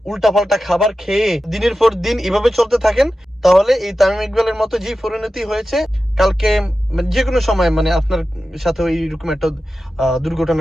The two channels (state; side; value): normal; both; correlation 0.93